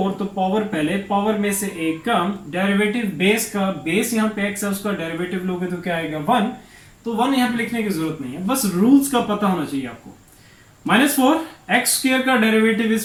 तो पावर पहले, पावर में से एक कम, डेरिवेटिव बेस का, बेस यहाँ पे x है, उसका डेरिवेटिव लोगे तो क्या आएगा 1। तो 1 यहाँ पे लिखने की जरूरत नहीं है, बस रूल्स का पता होना चाहिए आपको। -4 एक्स स्क्वायर का डेरिवेटिव,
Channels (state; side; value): identical; both; correlation 1.00